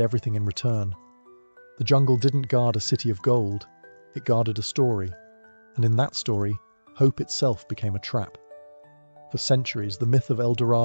everything in return. The jungle didn't guard a city of gold, it guarded a story, and in that story, hope itself became a trap. For centuries, the myth of El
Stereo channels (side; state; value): both; inverted; correlation -1.00